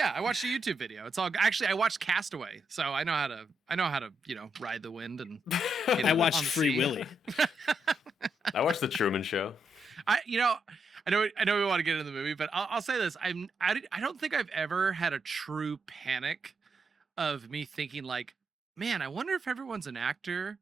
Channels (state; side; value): normal; both; correlation 0.80